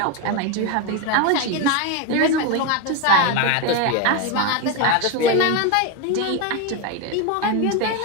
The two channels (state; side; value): different; both; correlation 0.03